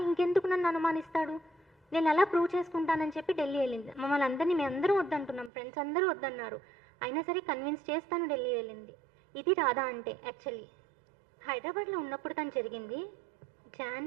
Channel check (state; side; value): drops out; left; at 5.5 s